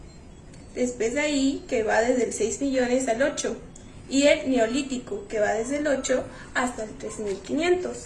Después de ahí, que va desde el 6 millones al 8, y el Neolítico, que va desde el 8 hasta el 3500.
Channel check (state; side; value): identical; both; correlation 1.00